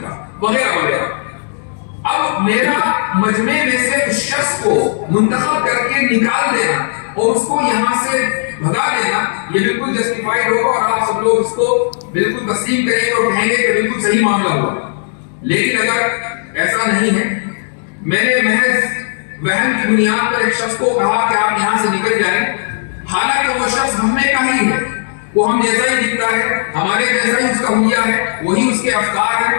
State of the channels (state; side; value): silent; right; digital silence